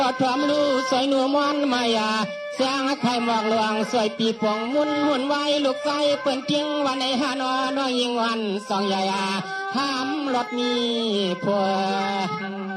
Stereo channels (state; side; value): identical; both; correlation 1.00